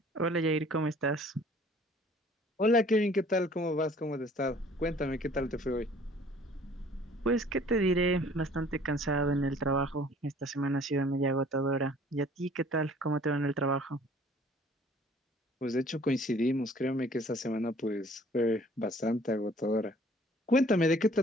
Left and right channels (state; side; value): normal; both; correlation 0.54